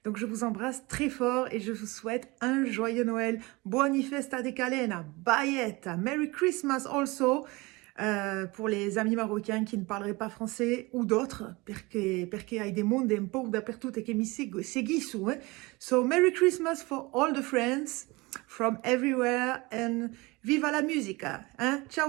Donc je vous embrasse très fort et je vous souhaite un joyeux Noël. Buoni festa de Calena, Baietta, Merry Christmas also. Pour les amis marocains qui ne parleraient pas français ou d'autres, perché hai des mondi un po' dappertutto che mi seguissero. So, Merry Christmas for all the friends from everywhere and viva la musica! Ciao,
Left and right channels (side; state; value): left; quieter; 23.8 dB